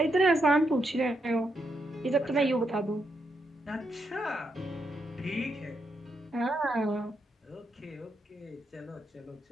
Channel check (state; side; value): normal; both; correlation 0.81